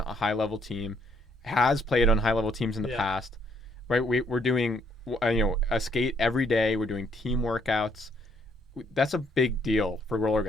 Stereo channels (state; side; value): normal; both; correlation 0.69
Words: high-level team, has played on high-level teams in the past, right? We're doing, a skate every day. We're doing team workouts. That's a big deal for roller